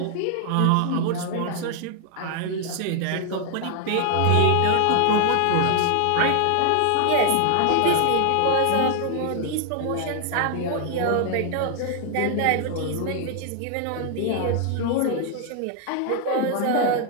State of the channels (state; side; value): different; both; correlation 0.00